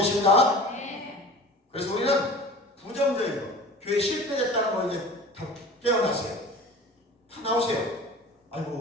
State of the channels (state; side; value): normal; both; correlation 0.40